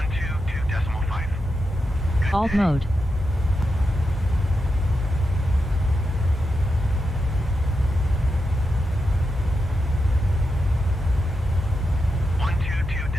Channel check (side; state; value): both; normal; correlation 0.87